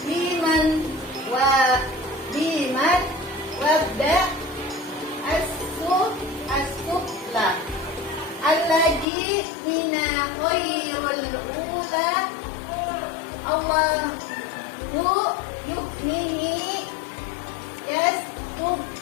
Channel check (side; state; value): right; drops out; at 9.1 s